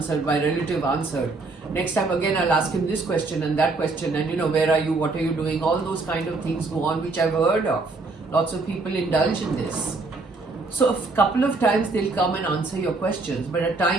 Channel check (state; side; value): quieter; left; 3.6 dB